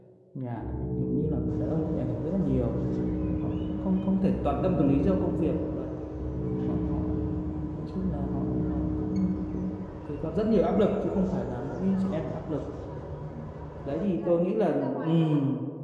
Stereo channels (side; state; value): both; identical; correlation 1.00